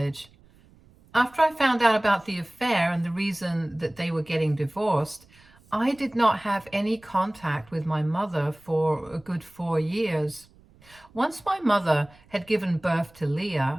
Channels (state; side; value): noise; right; rumble, 28 dB below the sound